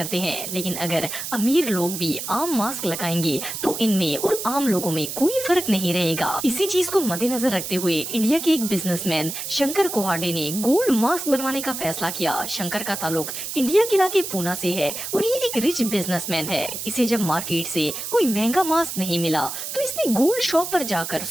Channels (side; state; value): right; noise; hiss, 6 dB below the sound